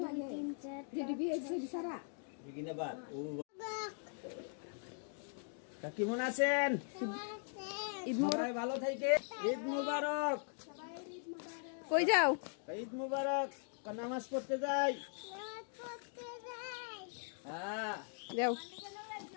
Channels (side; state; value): right; silent; 51 dB below the other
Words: বিগিনাবাদ। তা কেমন আছেন? ঈদ সবাই ভালো থেকে। ঈদ মুবারক। কই যাও? ঈদ মুবারক। নামাজ পড়তে যাই। হ্যাঁ, যাও।